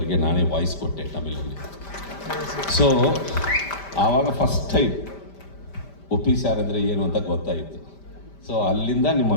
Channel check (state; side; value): late; right; 5.1 ms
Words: ನಾನೇ ವಾಯ್ಸ್ ಕೊಟ್ಟೆ ತಮಿಳಲ್ಲಿ. ಸೊ ಆವಾಗ ಫಸ್ಟ್ ಟೈಮ್ ಉಪ್ಪಿ ಸ್ಯಾರ್ ಅಂದರೆ ಏನು ಅಂತ ಗೊತ್ತಾಯಿತು. ಸೊ ಅಲ್ಲಿಂದ